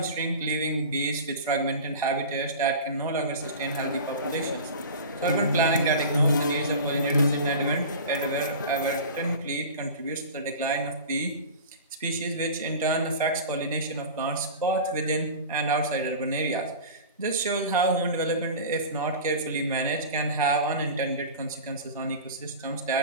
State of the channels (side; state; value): both; inverted; correlation -0.34